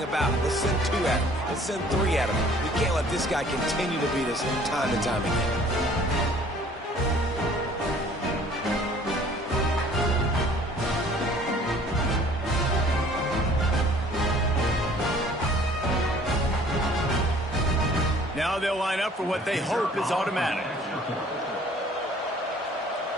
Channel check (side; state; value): both; normal; correlation 0.54